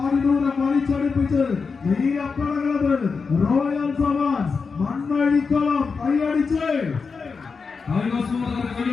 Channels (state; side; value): quieter; right; 5.0 dB